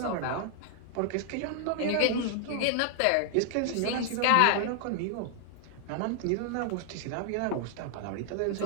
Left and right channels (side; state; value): both; different; correlation 0.00